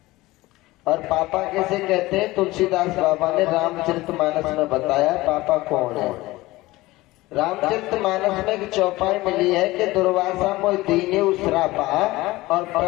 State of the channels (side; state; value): right; quieter; 19.3 dB